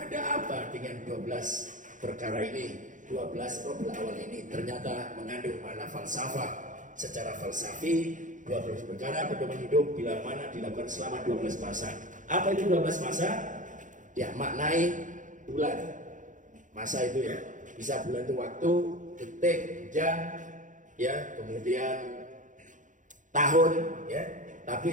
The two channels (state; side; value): late; left; 0.37 ms